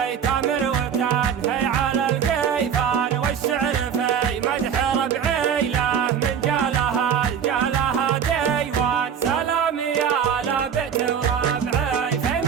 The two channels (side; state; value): left; quieter; 7.8 dB